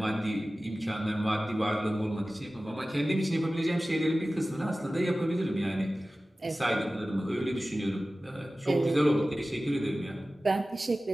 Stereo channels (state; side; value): normal; both; correlation 0.96